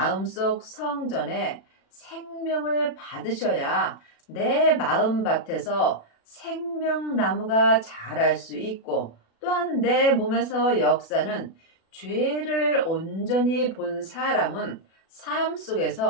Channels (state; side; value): late; right; 36 ms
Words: 성전에 생명을 받으셔야 내 마음밭에서 생명나무가 자랄 수 있고 또한 내 몸에서 역사는 죄를 온전히 본 사람은 삶